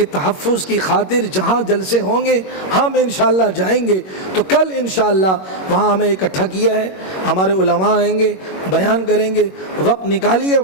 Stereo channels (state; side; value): late; right; 21 ms